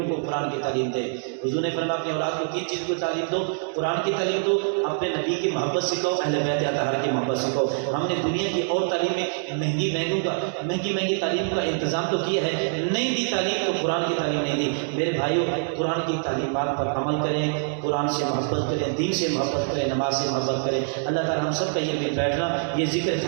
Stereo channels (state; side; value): silent; left; 62 dB below the other